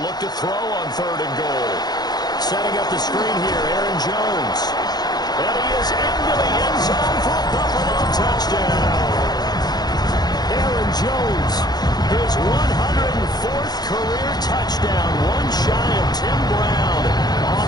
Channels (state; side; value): late; right; 0.19 ms